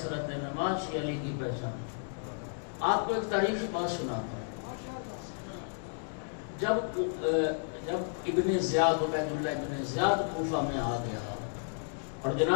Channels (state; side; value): silent; right; digital silence